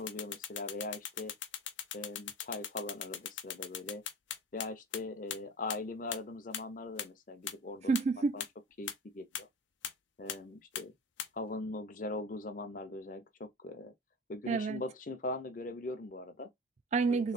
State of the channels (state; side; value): normal; both; correlation 0.36